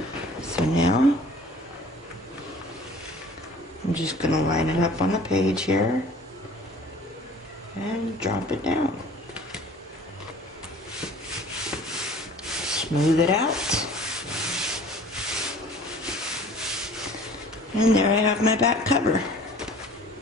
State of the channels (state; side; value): normal; both; correlation 0.48